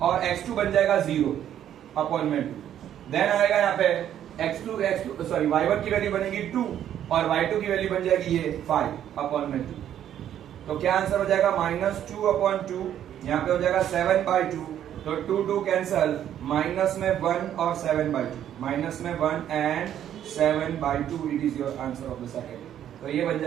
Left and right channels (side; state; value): left; quieter; 10.6 dB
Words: और x2 बन जाएगा 0 अपॉन में 2। देन आएगा यहाँ पे x2 सॉरी y1 की वैल्यू बनेगी 2 और y2 की वैल्यू बन जाएगी ये 5 अपॉन में 2। तो क्या आंसर हो जाएगा -2 अपॉन 2, यहाँ पे हो जाएगा 7 बाई 2, तो 2 कैंसल, माइनस में 1 और 7 बाई 2, माइनस में 1 and 7 by 2, it is your answer of the second. तो ये बन